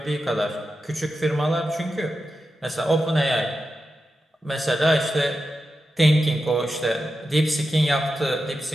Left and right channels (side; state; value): both; normal; correlation 0.90